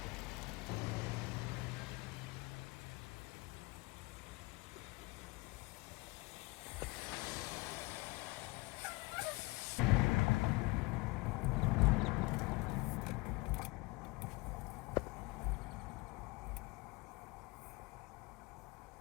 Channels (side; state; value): right; quieter; 25.1 dB